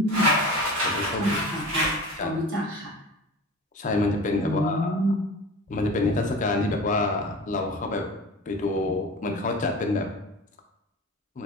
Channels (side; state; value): both; normal; correlation 0.35